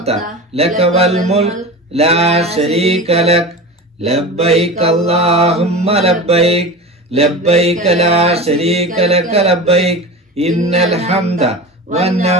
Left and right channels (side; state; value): both; normal; correlation 0.30